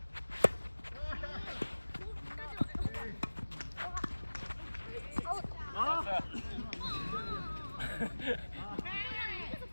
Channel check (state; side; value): inverted; both; correlation -1.00